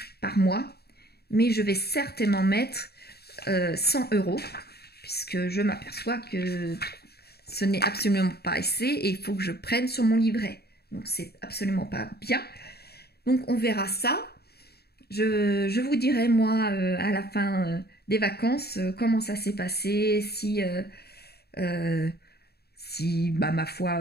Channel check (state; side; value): late; right; 0.47 ms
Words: par mois, mais je vais certainement mettre 100 €, puisque je m'aperçois que ce n'est absolument pas assez et il faut que je prenne sur mon livret. Donc c'est absolument pas bien. Donc on verra ça. Je vous dirai moi à la fin des vacances comment ça s'est passé, si ma foi